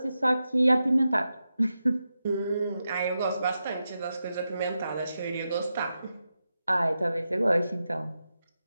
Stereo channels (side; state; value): both; inverted; correlation -0.89